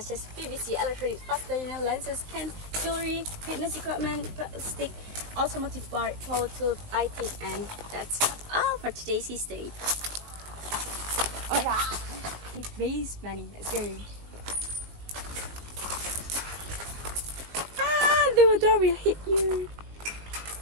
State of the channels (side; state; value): left; late; 19 ms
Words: as PVC, electronics, plastic lenses, cans, jewelry, fitness equipment, plastic, automotive part, power tools, lighting, and that's all for today's history. Alright, it raised money. Let's go. The door will hit you.